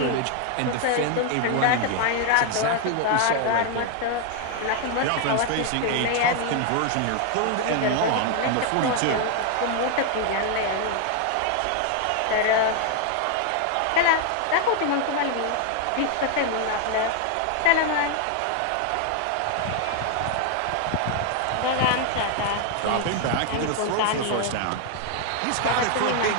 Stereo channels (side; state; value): both; different; correlation 0.00